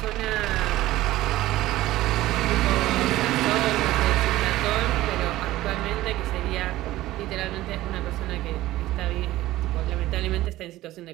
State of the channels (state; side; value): quieter; left; 16.2 dB